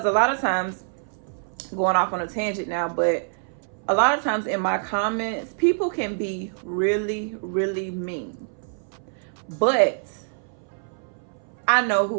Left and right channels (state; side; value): silent; left; 59 dB below the other